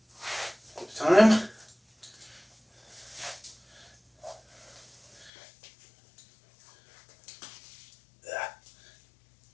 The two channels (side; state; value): right; drops out; at 5.3 s